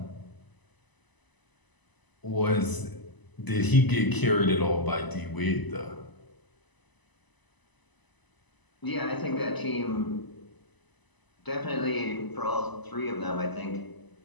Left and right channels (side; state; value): right; late; 1.0 ms